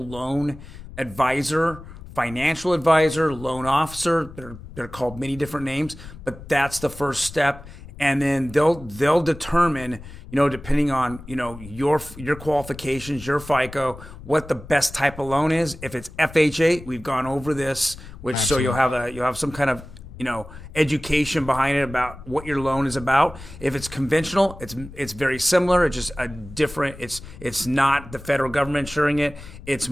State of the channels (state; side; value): noise; left; rumble, 16 dB below the sound